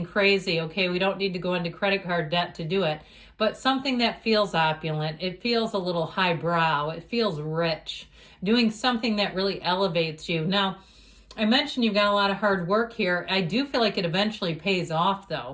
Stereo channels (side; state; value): both; identical; correlation 1.00